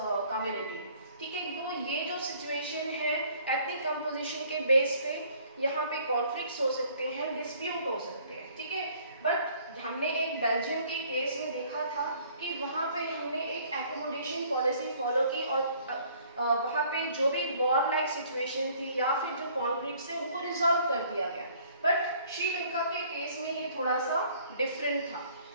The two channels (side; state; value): both; inverted; correlation -0.58